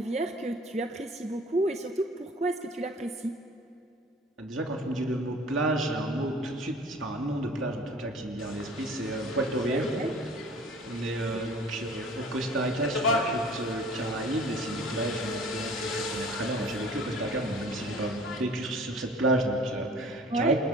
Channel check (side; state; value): both; normal; correlation 0.47